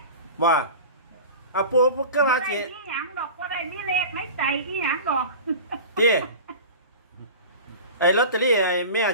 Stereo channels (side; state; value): both; inverted; correlation -0.35